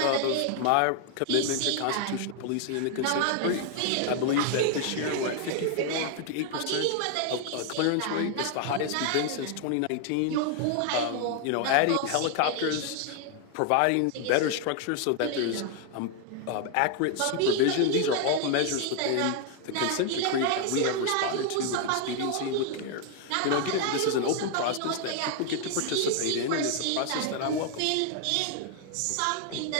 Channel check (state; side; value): different; both; correlation 0.00